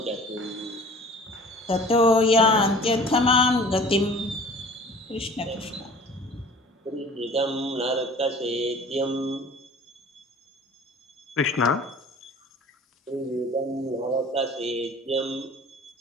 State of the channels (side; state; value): both; normal; correlation 0.46